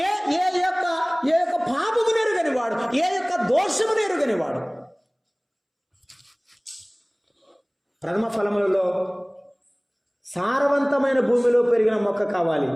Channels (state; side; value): identical; both; correlation 1.00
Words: యొక్క పాపమును ఎరుగని వాడు, ఏ యొక్క దోషమును ఎరుగని వాడు. ప్రథమ ఫలములలో సారవంతమైన భూమిలో పెరిగిన మొక్క కావాలి,